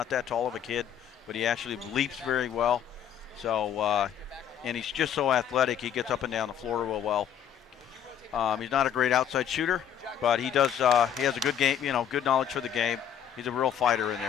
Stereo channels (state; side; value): quieter; right; 9.1 dB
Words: that tall of a kid, but he actually leaps very well. So, and he's just so athletic. He gets up and down the floor real well. He's not a great outside shooter, but he does. He has a good game. Good knowledge for the game. He's a real fighter in